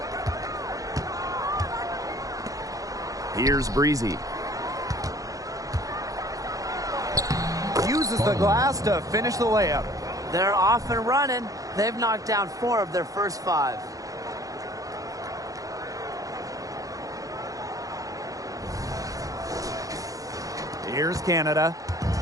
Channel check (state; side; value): late; left; 0.17 ms